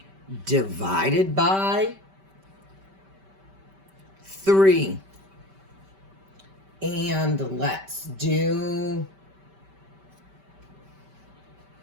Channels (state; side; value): late; left; 5.2 ms